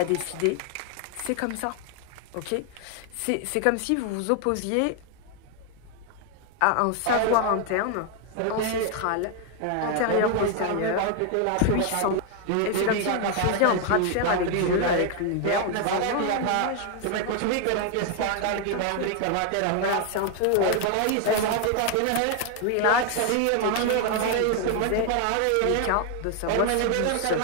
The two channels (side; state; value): both; different; correlation 0.00